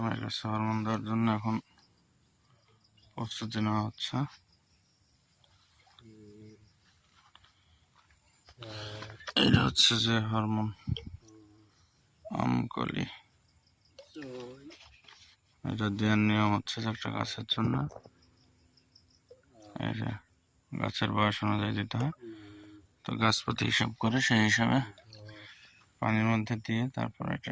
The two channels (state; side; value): identical; both; correlation 1.00